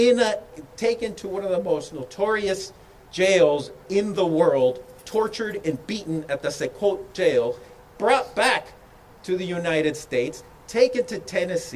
taken to one of the most notorious jails in the world, tortured and beaten at the Sequot jail, brought back to the United States, taken to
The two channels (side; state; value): both; identical; correlation 1.00